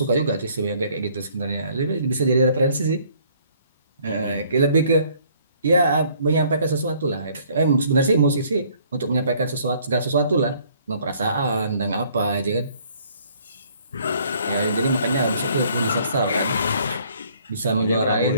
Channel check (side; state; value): both; inverted; correlation -0.61